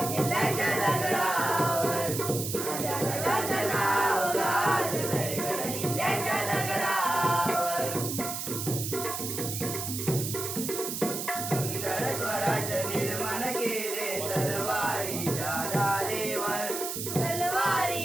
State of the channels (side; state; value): right; noise; hiss, 4 dB below the sound